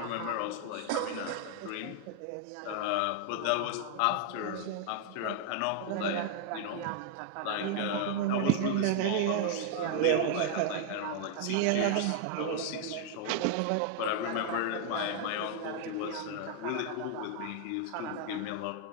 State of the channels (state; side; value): different; both; correlation 0.00